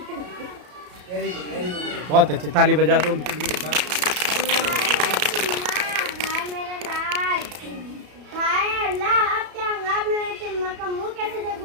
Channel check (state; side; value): late; left; 33 ms